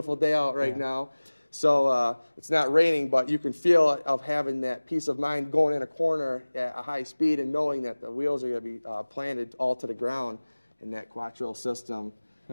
day out right now. So it's not raining, but you can feel of having that peace of mind going in a corner at a high speed and knowing that the wheels are going to be planted all to the ground in that quattro system.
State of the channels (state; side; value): inverted; both; correlation -1.00